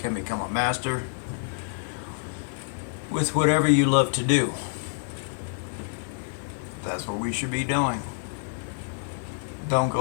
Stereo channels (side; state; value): right; silent; digital silence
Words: become a master with whatever you love to do. That's what we should be doing. Don't